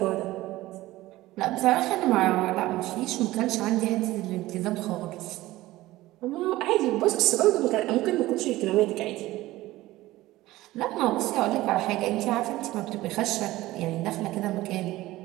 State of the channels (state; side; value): quieter; left; 17.3 dB